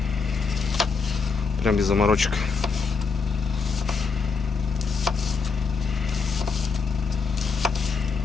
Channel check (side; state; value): right; quieter; 5.0 dB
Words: Прям без заморочек.